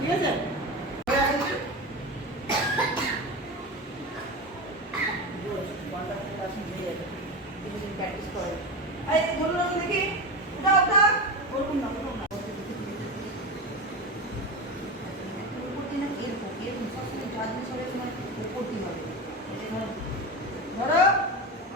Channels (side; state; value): both; normal; correlation 0.22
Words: আছে প্র্যাকটিস করো এই বলো না দেখি উঠা বলুন না উপর দিন এরকম সবসময় জাজমেন্ট সবাই সময় উপর দিন হবে ধরো